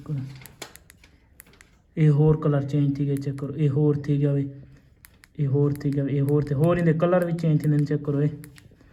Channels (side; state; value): both; identical; correlation 1.00